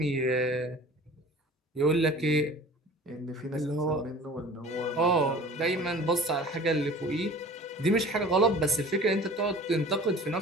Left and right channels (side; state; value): both; normal; correlation 0.43